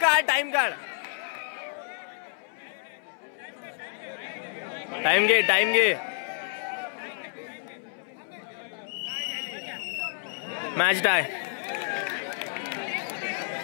टाइम काढ. टाइम घे. टाइम घे. Match tie.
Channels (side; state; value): right; silent; 58 dB below the other